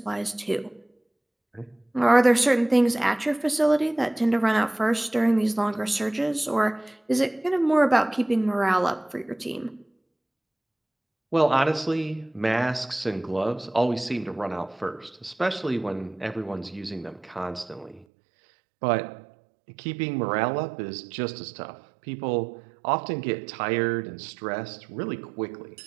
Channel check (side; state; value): left; drops out; at 18.1 s